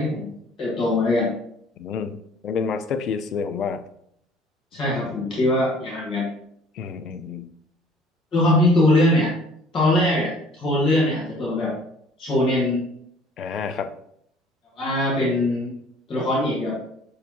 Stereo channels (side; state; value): both; normal; correlation 0.54